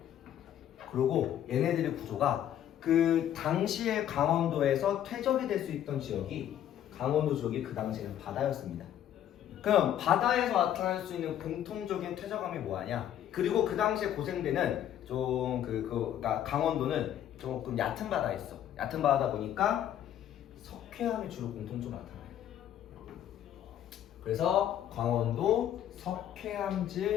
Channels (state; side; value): quieter; right; 10.8 dB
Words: 그리고 얘네들의 구조가 그 당시에 강원도에서 퇴적이 될 수 있던 지역이 강원도 지역이 그 당시에는 바다였습니다. 그럼 바다에서 나타날 수 있는 공통적인 퇴적함이 뭐하냐? 그리고 그 당시에 고생대는 좀 그러니까 강원도는 조금 얕은 바다였어. 얕은 바다다 보니까 석회암이 주로 공통적으로 나타나요. 그래서 강원도